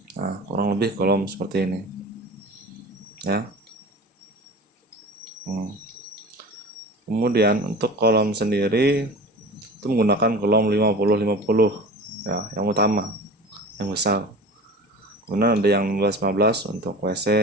Nah, kurang lebih kolom seperti ini ya. Kemudian untuk kolom sendiri itu menggunakan kolom 50-50 ya, yang utama, yang besar. Kemudian ada yang 15-15 untuk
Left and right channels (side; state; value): both; normal; correlation 0.36